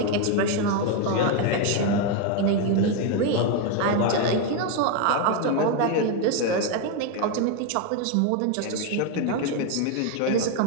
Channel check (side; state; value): both; different; correlation 0.01